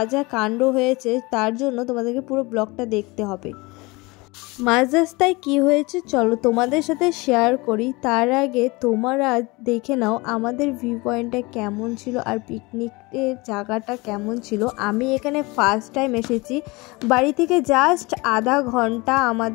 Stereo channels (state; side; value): quieter; right; 24.4 dB